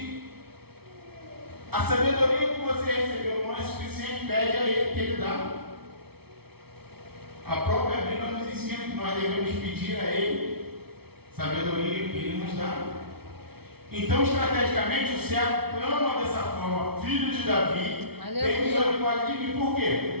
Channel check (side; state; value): left; late; 0.96 ms